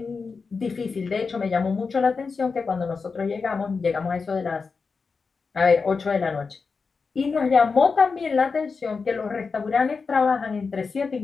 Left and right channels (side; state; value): right; quieter; 4.8 dB